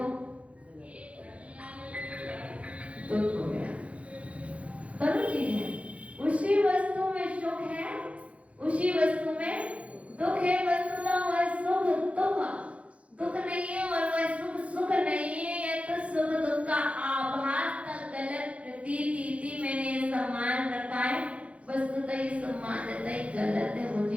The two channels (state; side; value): late; left; 0.063 ms